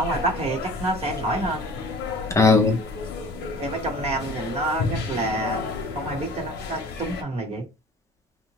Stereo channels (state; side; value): normal; both; correlation 0.45